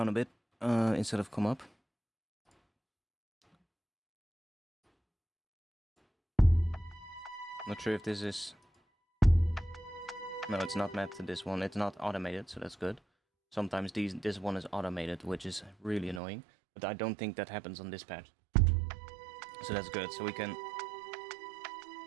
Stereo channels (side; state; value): left; drops out; at 16.2 s